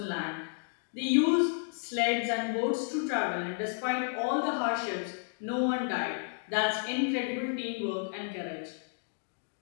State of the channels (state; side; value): silent; right; digital silence